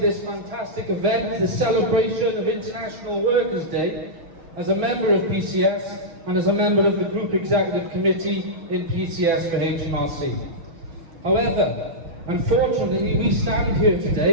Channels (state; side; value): late; left; 6.1 ms